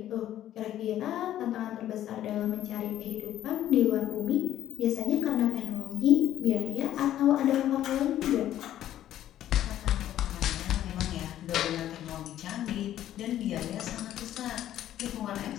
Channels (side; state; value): right; quieter; 12.2 dB